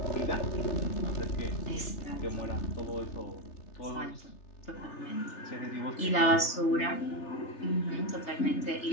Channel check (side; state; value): right; late; 3.3 ms